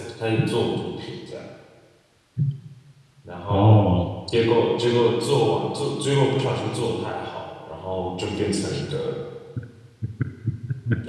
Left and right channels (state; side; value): identical; both; correlation 1.00